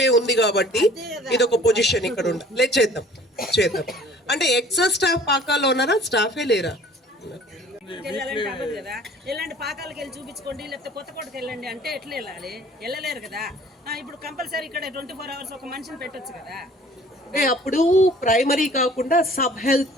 ఉంది కాబట్టి ఇది ఒక పొజిషన్ ఇక్కడ ఉండాలి. లేదు చేద్దాం. అంటే ఎక్సెస్ స్టాఫ్ పాకాల్లో ఉన్నారా? స్టాఫే లేరా? ఎలాంటి పాకాలకు వెళ్ళి చూపించుకోండి, లేకపోతే కొత్తకోటకి వెళ్ళండి అంటే ఎట్లా వెళ్ళాలి? వెళ్ళలేరు కదా. ఇప్పుడు కంపల్సరీ ఇక్కడ 24 hours ఒక మనిషిని పెట్టొచ్చు కదా. అప్పుడు ప్రైమరీ కాకుండా సబ్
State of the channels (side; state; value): both; normal; correlation 0.51